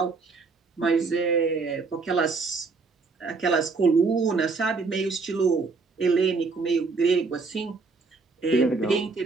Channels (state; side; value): quieter; left; 4.3 dB